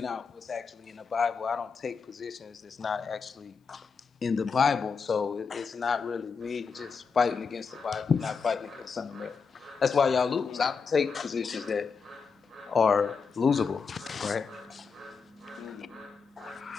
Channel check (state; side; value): quieter; right; 5.4 dB